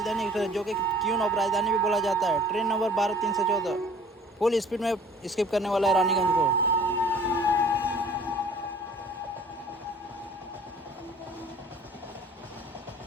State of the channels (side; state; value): both; normal; correlation 0.50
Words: एक्सप्रेस, जो कि क्वीन ऑफ राजधानी भी बोला जाता है। ट्रेन नंबर 12-314 फुल स्पीड में स्किप करने वाला है रानीगंज को।